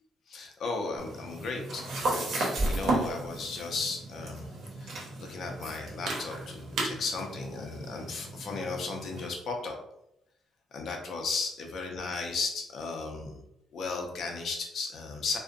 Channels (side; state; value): both; normal; correlation 0.72